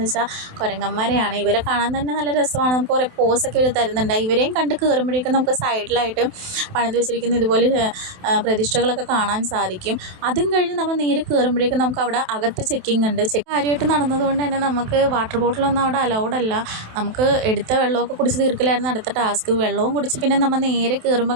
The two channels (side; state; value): left; late; 27 ms